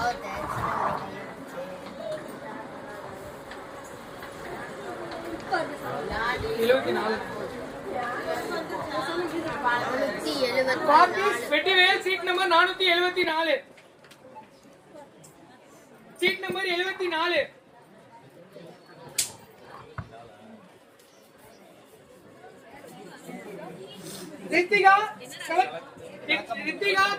Vettivel seat number 474. Seat number 74. Rithika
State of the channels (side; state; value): both; identical; correlation 1.00